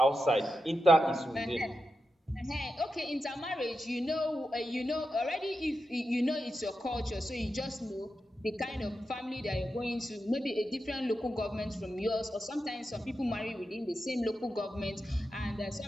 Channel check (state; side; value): normal; both; correlation 0.89